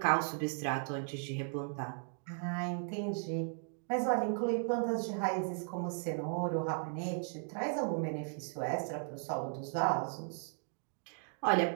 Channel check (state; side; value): silent; left; 53 dB below the other